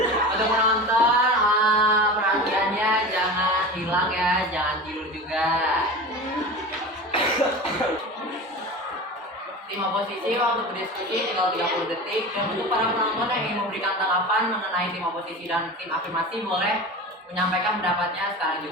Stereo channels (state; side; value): normal; both; correlation 0.31